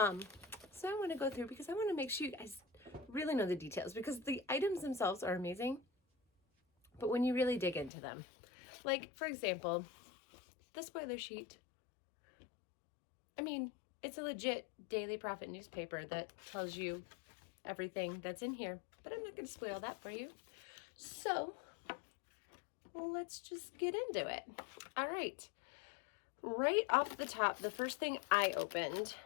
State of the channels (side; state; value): right; drops out; at 7.9 s